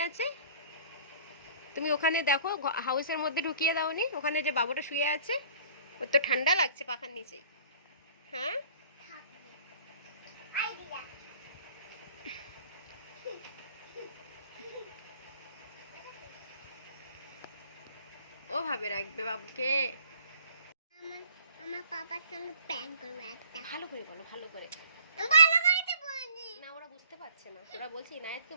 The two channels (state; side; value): inverted; both; correlation -0.51